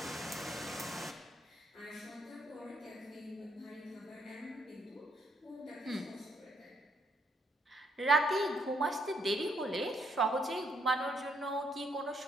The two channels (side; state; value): both; normal; correlation 0.73